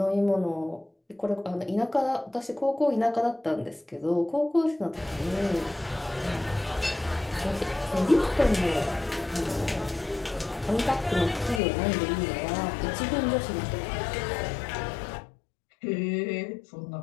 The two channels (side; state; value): right; drops out; at 11.6 s